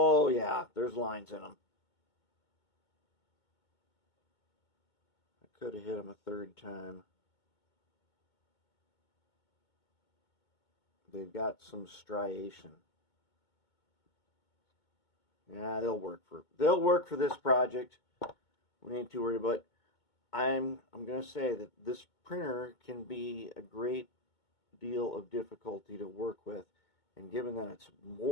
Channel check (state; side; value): late; right; 2.2 ms